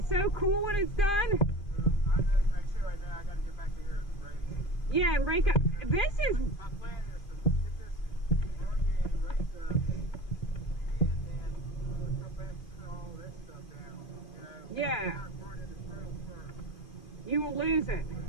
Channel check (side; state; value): right; late; 2.5 ms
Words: so cool when it's done. Yeah, and break up. This is. My plan is to get this done and race up and come back and put all this stuff down. Yeah. Not burning this road first. You will lose it.